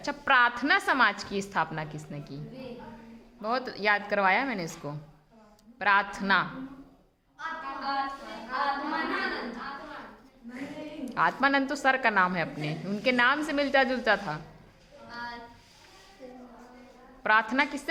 प्रार्थना समाज की स्थापना किसने की? बहुत याद करवाया मैंने इसको। प्रार्थना, आत्मानंद तो सर का नाम है अपने, उनके नाम से मिलता जुलता था। प्रार्थना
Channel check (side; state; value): both; identical; correlation 1.00